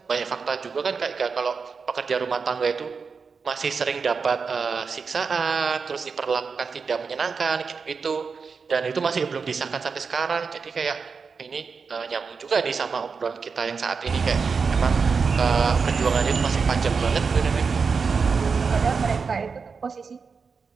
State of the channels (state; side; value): quieter; left; 5.2 dB